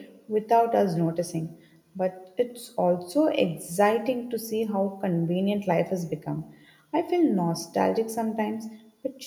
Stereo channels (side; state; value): both; identical; correlation 1.00